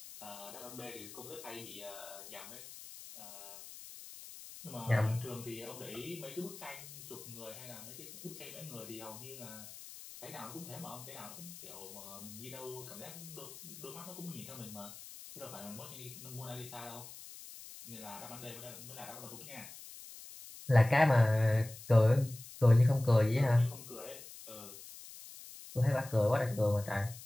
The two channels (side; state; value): left; noise; hiss, 15 dB below the sound